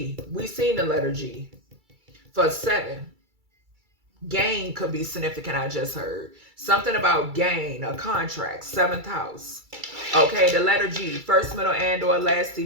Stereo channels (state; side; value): late; left; 2.3 ms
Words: we seen the letter G for 7. Gain could be significant, I just heard. Something about gain, a contract, 7th house. Okay, the letter G, first, middle, and or last